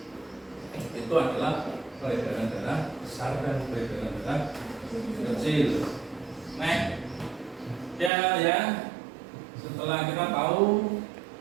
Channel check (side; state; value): left; drops out; at 8.1 s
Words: itu adalah peredaran darah besar dan peredaran darah kecil. Nah, ya, setelah kita tahu